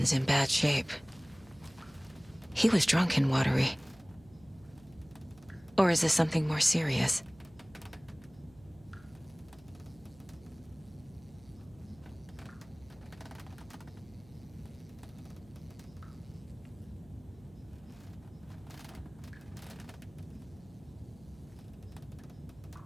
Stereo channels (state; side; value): noise; right; hum, 24 dB below the sound